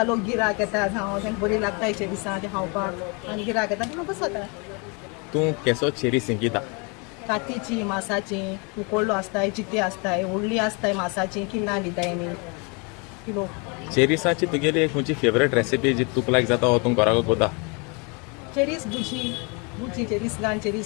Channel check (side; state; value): right; quieter; 32.1 dB